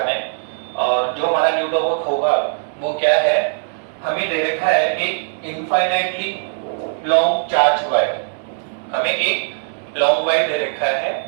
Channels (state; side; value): silent; left; 66 dB below the other